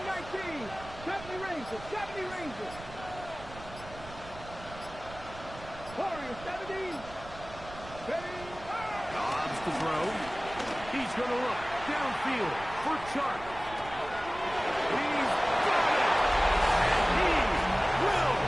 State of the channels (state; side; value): noise; right; rumble, 16 dB below the sound